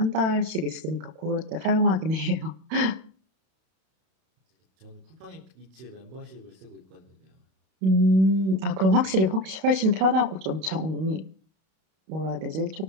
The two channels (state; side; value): late; left; 32 ms